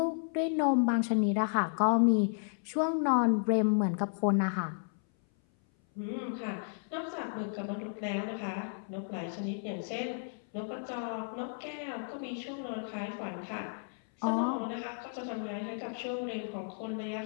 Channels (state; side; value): silent; right; 56 dB below the other